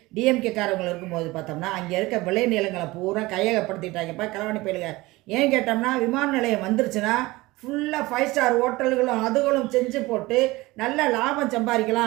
டிஎம்கே காரவங்க இருக்கும்போது பார்த்தோம்னா, அங்கே இருக்க விளை நிலங்களை பூரா கையகப்படுத்திட்டாங்கப்பா களவாணி பயலுக. ஏன் கேட்டோம்னா, விமான நிலையம் வந்துருச்சுன்னா ஃபுல்லாக 5 ஸ்டார் ஹோட்டல்களும் அதுகளும் செஞ்சு போட்டு நல்ல லாபம்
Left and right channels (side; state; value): left; quieter; 20.6 dB